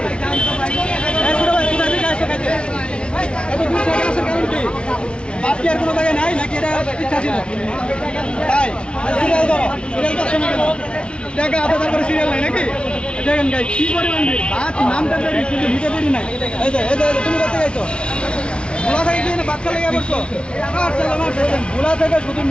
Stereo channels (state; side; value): late; right; 0.057 ms